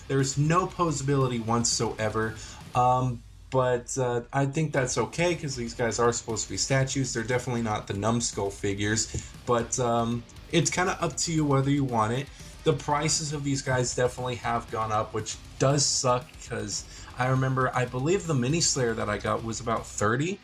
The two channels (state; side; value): identical; both; correlation 1.00